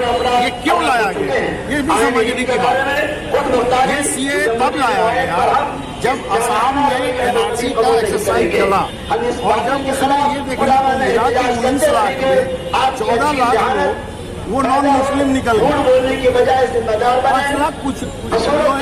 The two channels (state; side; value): identical; both; correlation 1.00